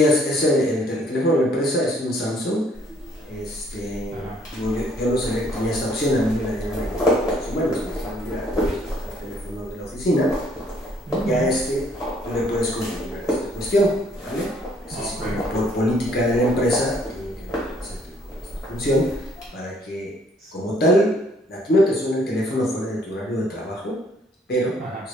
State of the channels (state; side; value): normal; both; correlation 0.63